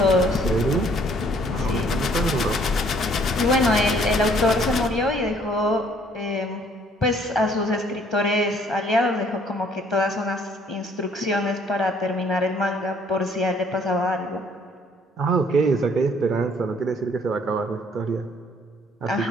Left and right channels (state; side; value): normal; both; correlation 0.61